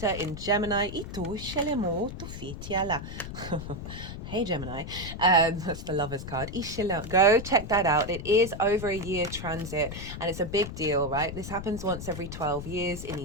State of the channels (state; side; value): noise; left; rumble, 9 dB below the sound